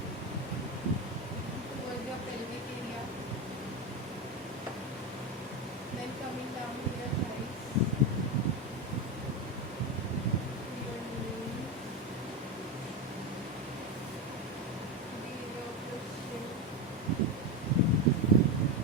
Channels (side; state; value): both; normal; correlation 0.14